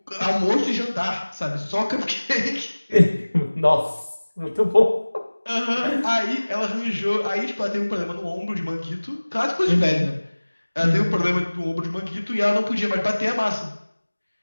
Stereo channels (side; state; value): both; inverted; correlation -1.00